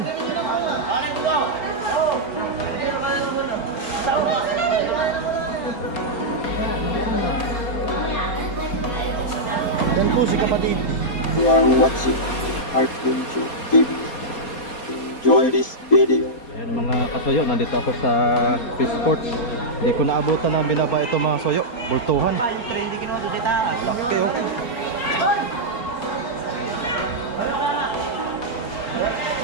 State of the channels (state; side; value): late; right; 4.3 ms